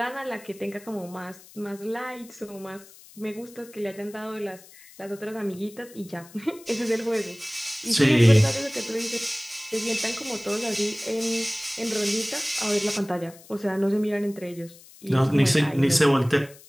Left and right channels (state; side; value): noise; left; hiss, 22 dB below the sound